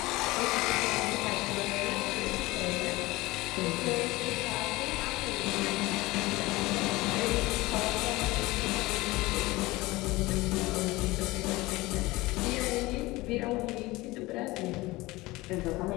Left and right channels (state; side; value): quieter; right; 20.5 dB